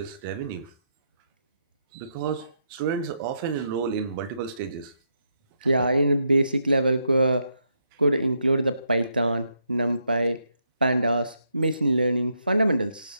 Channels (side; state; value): both; inverted; correlation -0.80